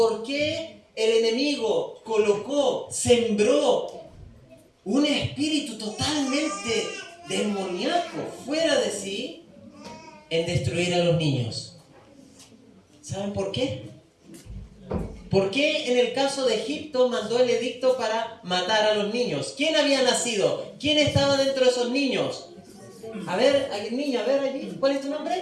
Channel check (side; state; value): both; identical; correlation 1.00